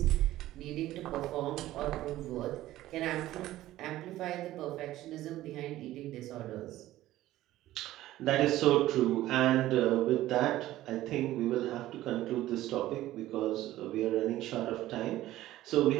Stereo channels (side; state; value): left; quieter; 15.1 dB